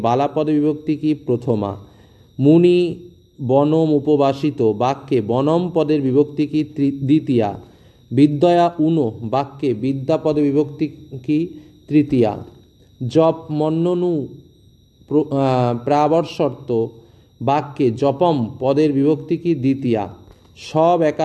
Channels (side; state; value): both; identical; correlation 1.00